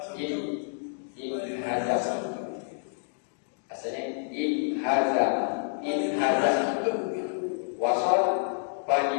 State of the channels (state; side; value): silent; right; digital silence